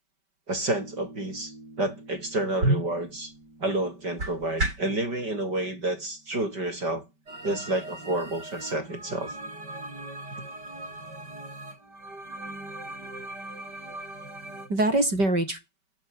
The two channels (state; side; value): late; left; 5.2 ms